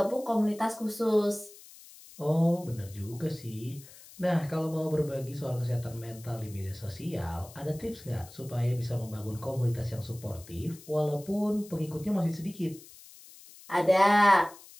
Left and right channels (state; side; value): noise; left; hiss, 20 dB below the sound